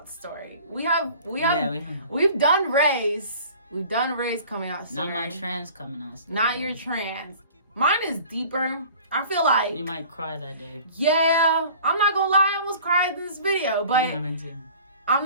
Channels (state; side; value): inverted; both; correlation -0.46